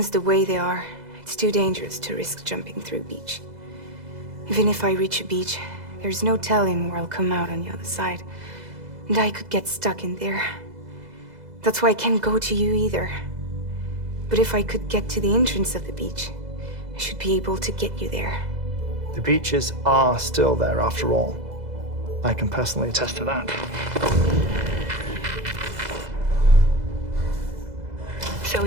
the way they are, it's too dangerous to risk jumping through a beach. Even if I reach a beach, there's no telling where I'll come out on the other side. And I could get stuck in there. That's why I can't go to you either. But if I could get to the entrance of the beach, I should be able to get you there. The beaches are still there after all. I can personally attest to that. So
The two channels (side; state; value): left; late; 2.0 ms